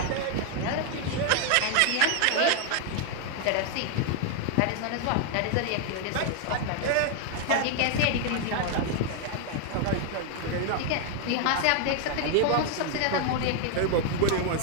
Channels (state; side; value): different; both; correlation 0.00